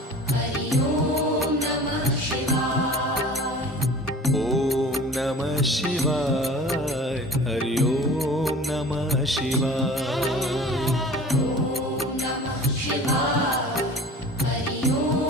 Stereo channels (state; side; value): normal; both; correlation 0.42